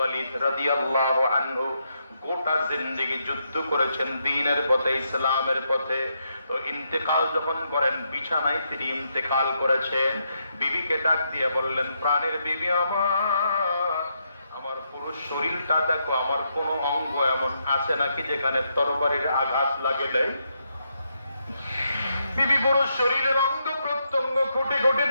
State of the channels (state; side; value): inverted; both; correlation -0.80